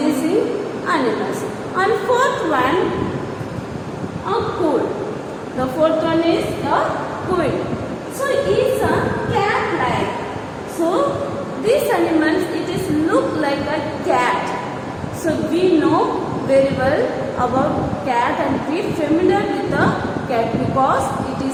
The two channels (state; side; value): identical; both; correlation 1.00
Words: animals. And fourth one, a quail. The fourth one is a quail. So it's a cat-like. So these animals, it is look like a cat. So we know very well about cat and we familiar with the cat because it